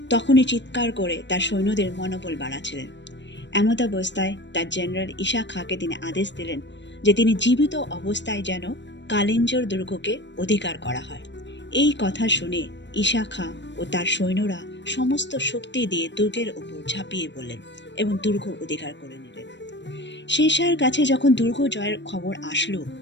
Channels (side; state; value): right; late; 0.52 ms